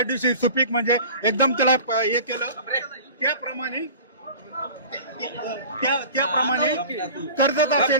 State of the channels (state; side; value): inverted; both; correlation -0.39